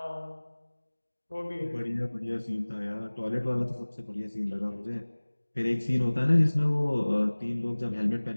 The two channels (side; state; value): both; inverted; correlation -1.00